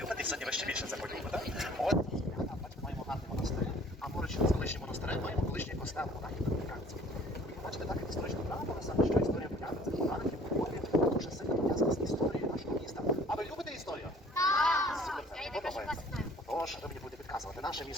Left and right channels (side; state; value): both; normal; correlation 0.53